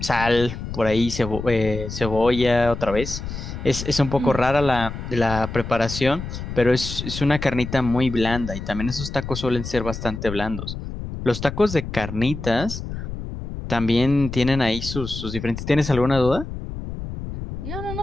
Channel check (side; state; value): left; noise; rumble, 8 dB below the sound